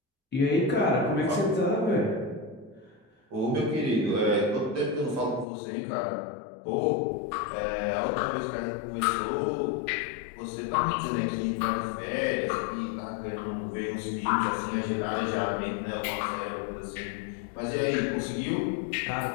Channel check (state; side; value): drops out; right; at 5.5 s